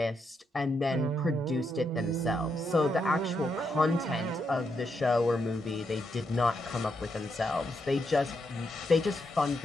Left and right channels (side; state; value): both; normal; correlation 0.81